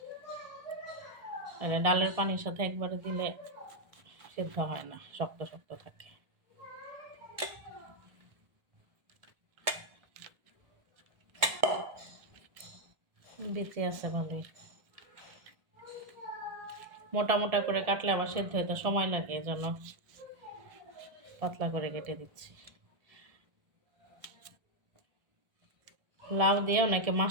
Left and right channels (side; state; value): left; late; 1.3 ms